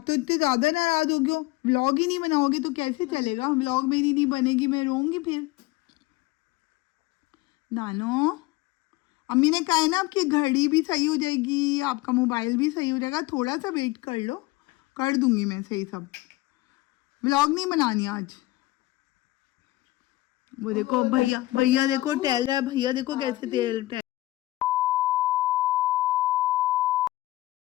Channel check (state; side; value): quieter; right; 18.6 dB